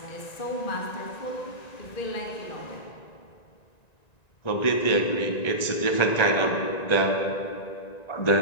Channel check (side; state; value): right; late; 1.9 ms